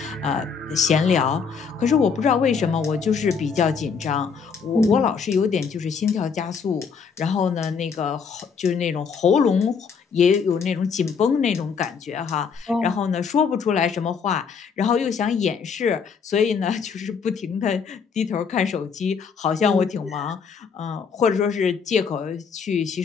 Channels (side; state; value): right; quieter; 6.0 dB